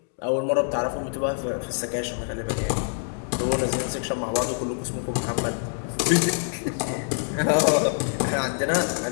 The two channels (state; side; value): silent; right; digital silence